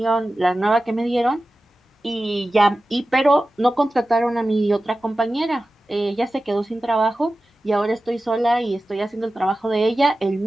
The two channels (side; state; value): both; normal; correlation 0.95